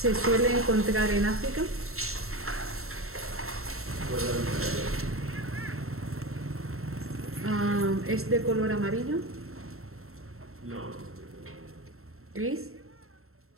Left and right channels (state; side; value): late; left; 0.62 ms